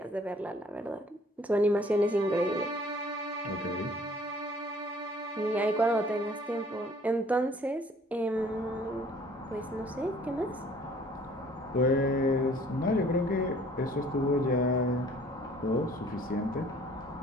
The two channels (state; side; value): normal; both; correlation 0.55